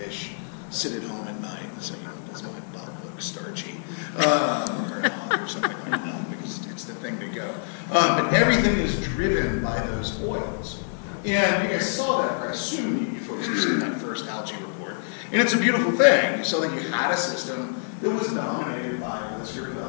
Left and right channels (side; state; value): right; silent; digital silence